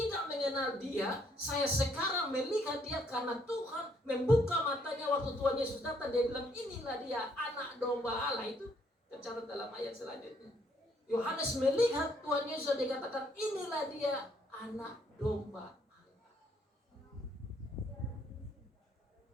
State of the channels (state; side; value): normal; both; correlation 0.69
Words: mengenal dia, saya sekarang melihat dia karena Tuhan membuka matanya waktu Tuhan Yesus datang. Dia bilang, inilah dia anak domba Allah. Itu tercatat dalam ayat selanjutnya. Yohanes melihat Tuhan Yesus, dia katakan, inilah dia anak domba Allah.